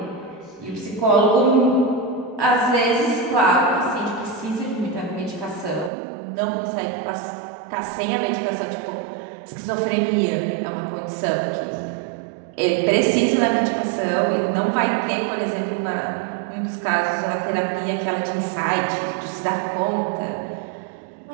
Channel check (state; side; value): drops out; left; at 5.9 s